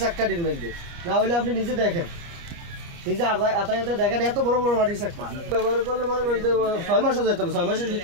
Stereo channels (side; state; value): left; late; 29 ms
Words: মধ্যে না হলে আপনি নিজে দেখেন নিজে আতায়াতে দেখেন এত বড় বড় মাটির চাক্কা ব্যবহার করলে মনে করেন যে 6 মাসও যেত না 6 মাসের